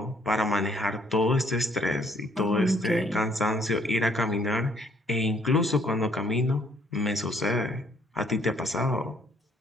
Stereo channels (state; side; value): normal; both; correlation 0.64